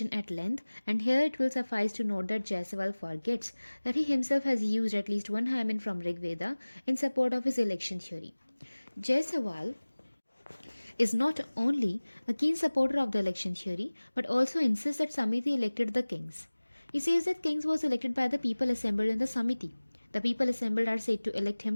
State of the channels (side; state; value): both; inverted; correlation -1.00